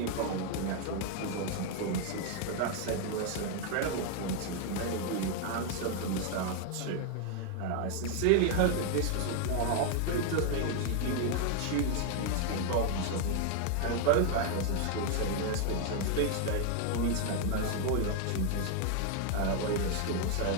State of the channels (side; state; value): both; different; correlation 0.00